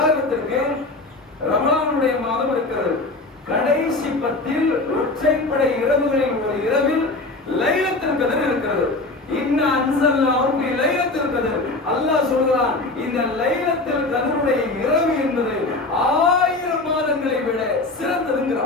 ரமலானுடைய மாதம் இருக்கிறது. கடைசி 10 ஒற்றைப்படை இரவுகளில் ஒரு இரவில் லைலத்துல் கத்ர் இருக்கிறது. இன்னா அன்ஸல்னாஹு ஃபீ லைலத்துல் கத்ர். அல்லாஹ் சொல்றான், இந்த லைலத்துல் கத்ருடைய இரவு என்பது 1000 மாதங்களை விட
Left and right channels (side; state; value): right; quieter; 3.1 dB